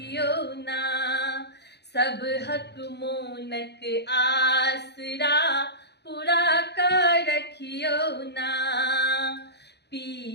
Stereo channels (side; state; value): right; late; 0.49 ms